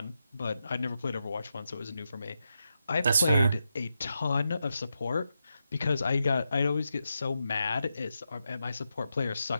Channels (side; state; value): both; inverted; correlation -0.86